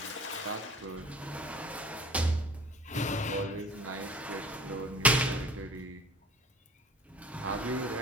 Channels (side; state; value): both; normal; correlation 0.46